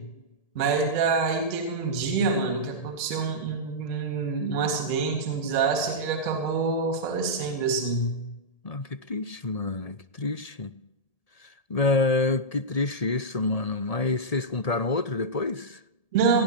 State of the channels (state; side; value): late; right; 1.8 ms